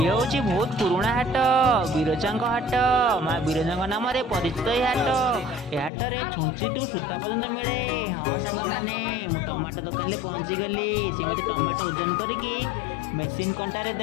ये हूँ बहुत पुराना हाट, बिरजा हाट। माँ बिरजा नाम परिचित ये हाट। ये हाट में छुंची टू सूता पर्यंत मिले। हाँ सांग मैंने मु टमाटो दुकान में पहुँची गली। सी मत टमाटो ओजन करके मेसीन कंटारे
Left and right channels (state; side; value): drops out; right; at 5.9 s